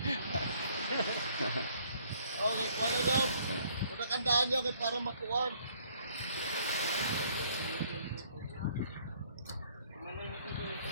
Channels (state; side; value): inverted; both; correlation -0.62